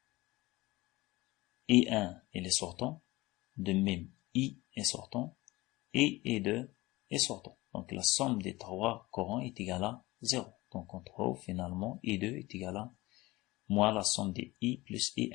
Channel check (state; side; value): quieter; right; 20.3 dB